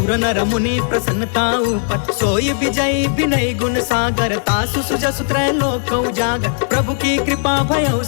नर मुनि प्रसन्नता ऊपर। सोई विजयी विनय गुण सागर, तासु सुजसु त्रैलोक उजागर। प्रभु की कृपा भयउ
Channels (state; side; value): silent; right; 65 dB below the other